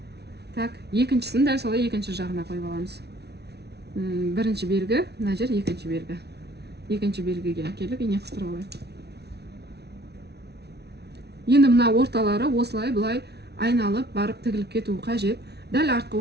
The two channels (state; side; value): late; left; 0.49 ms